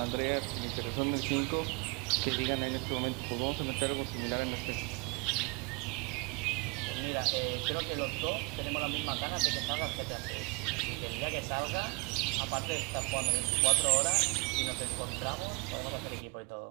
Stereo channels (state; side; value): quieter; left; 30.2 dB